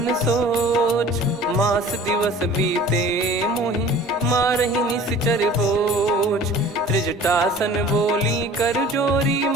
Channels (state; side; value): normal; both; correlation 0.45